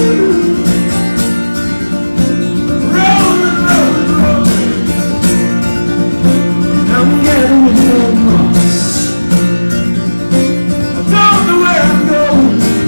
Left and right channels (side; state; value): both; inverted; correlation -1.00